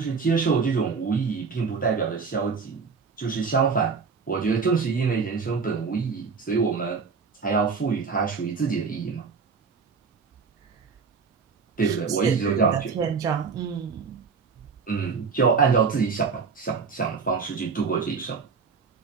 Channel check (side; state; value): left; quieter; 5.3 dB